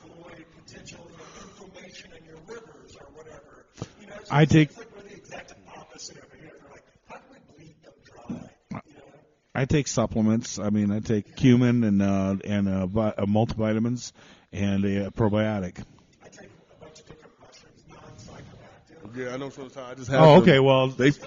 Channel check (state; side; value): identical; both; correlation 1.00